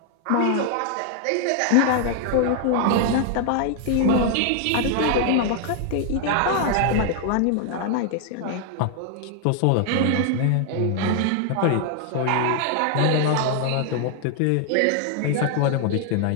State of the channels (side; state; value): both; different; correlation 0.00